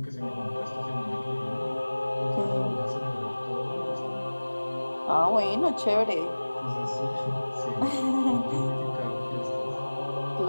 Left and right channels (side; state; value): both; inverted; correlation -1.00